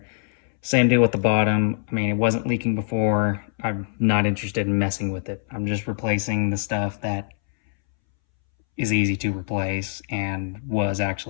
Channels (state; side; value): silent; right; 63 dB below the other